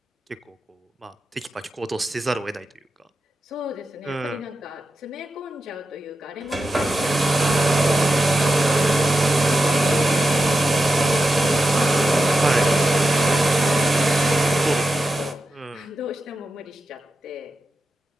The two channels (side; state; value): both; normal; correlation 0.90